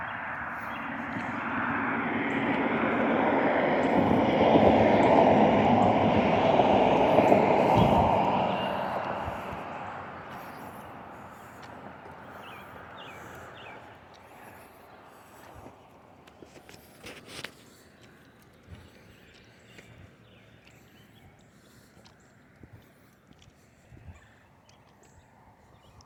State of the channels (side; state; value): both; identical; correlation 1.00